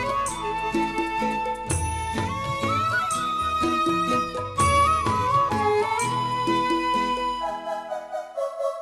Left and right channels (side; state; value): both; identical; correlation 1.00